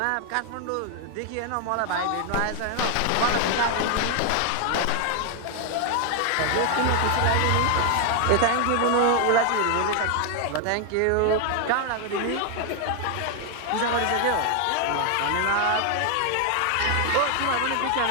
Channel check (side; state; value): both; different; correlation 0.00